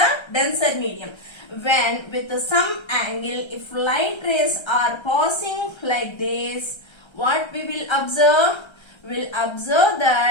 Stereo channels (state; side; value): late; right; 1.3 ms